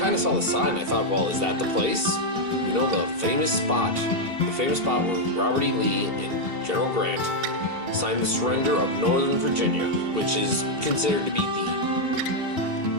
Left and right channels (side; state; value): left; late; 2.8 ms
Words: of saw the sign and I thought, well, is that the place? The famous spot. The famous spot where Robert E. Lee and General Grant signed the surrender of Northern Virginia, which is considered to be the